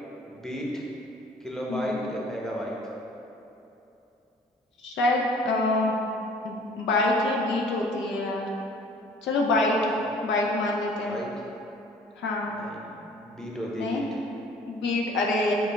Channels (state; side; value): normal; both; correlation 0.52